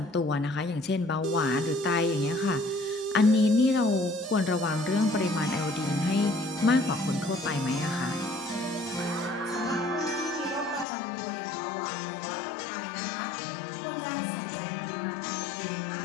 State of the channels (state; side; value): drops out; right; at 10.9 s